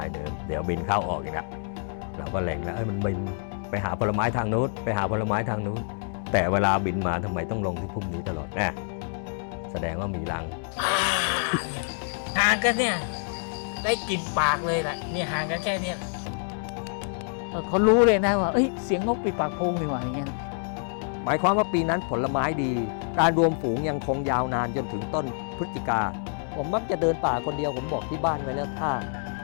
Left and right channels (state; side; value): silent; right; 60 dB below the other